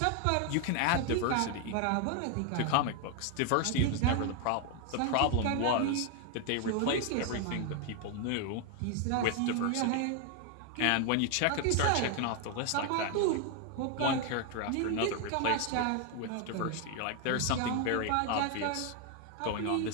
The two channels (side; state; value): both; different; correlation 0.01